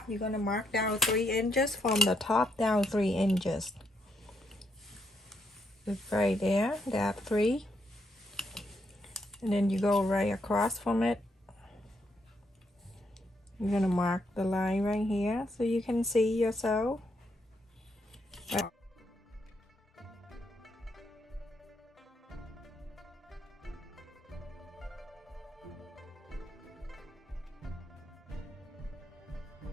You're gonna mark down 3 inches from the top down 3 inches. It's right there, that 3, and then you go right across from it. You're gonna mark the line right here so you can see your sew.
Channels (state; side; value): normal; both; correlation 0.77